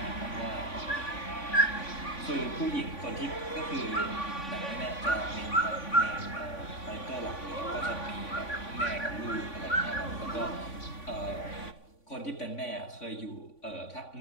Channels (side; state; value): right; late; 3.5 ms